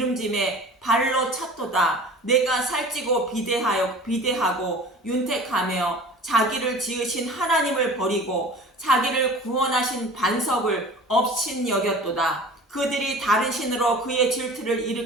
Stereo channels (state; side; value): normal; both; correlation 0.41